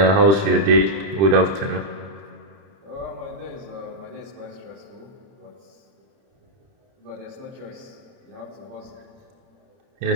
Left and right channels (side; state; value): left; late; 30 ms